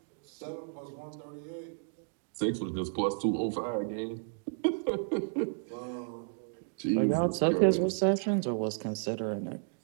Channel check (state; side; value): silent; left; digital silence